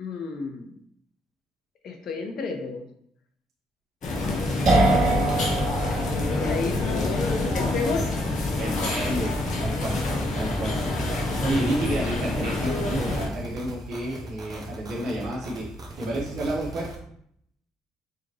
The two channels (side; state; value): both; normal; correlation 0.74